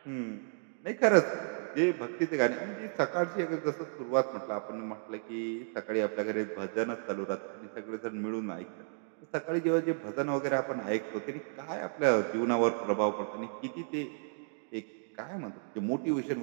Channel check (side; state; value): left; silent; digital silence